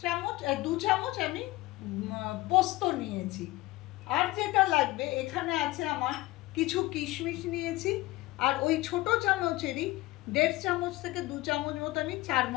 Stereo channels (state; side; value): quieter; right; 19.2 dB